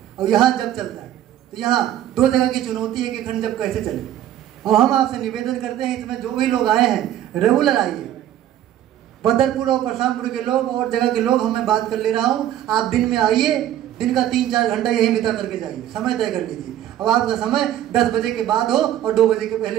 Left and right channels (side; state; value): left; quieter; 11.9 dB